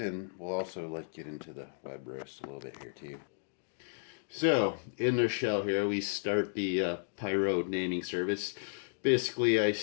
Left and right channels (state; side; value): silent; right; digital silence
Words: we'll also get into the web roast a little bit here too. So in the shell here, we start the Pyro naming service. Basically, I